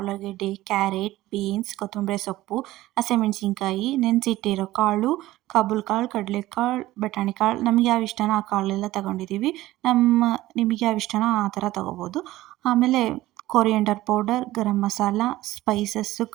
ಕ್ಯಾರೆಟ್, ಬೀನ್ಸ್, ಕೊತ್ತಂಬರಿ ಸೊಪ್ಪು, ಹಸಿಮೆಣಸಿನ್ಕಾಯಿ, ನೆನೆಸಿಟ್ಟಿರೋ ಕಾಳು, ಕಾಬೂಲ್ ಕಾಳು, ಕಡಲೆಕಾಳು, ಬಟಾಣಿ ಕಾಳು. ನಮಗೆ ಯಾವ ಇಷ್ಟನೋ ಆ ಕಾಳೆಲ್ಲ ತಗೊಂಡಿದ್ದೀವಿ. ನಿಮಗೆ ಯಾವ ಇಷ್ಟನೋ ಆ ಥರ ತೊಗೋಬೋದು. ಆಮೇಲೆ coriander powder, garam masala, spices,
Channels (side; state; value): left; quieter; 16.5 dB